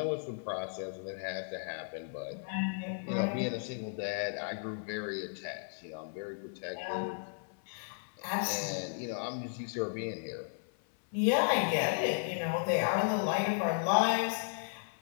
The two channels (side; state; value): right; silent; 55 dB below the other